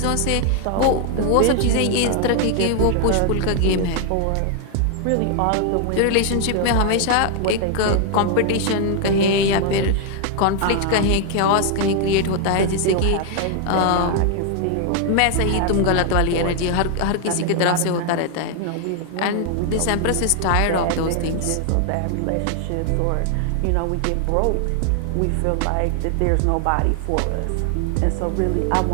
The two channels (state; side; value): different; both; correlation 0.00